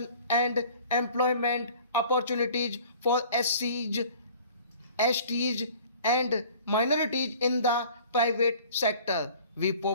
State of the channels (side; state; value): both; inverted; correlation -0.48